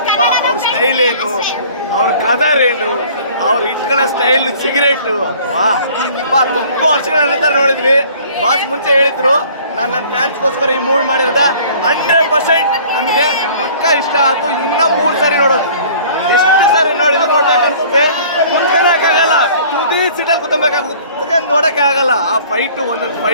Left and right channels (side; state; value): both; inverted; correlation -0.51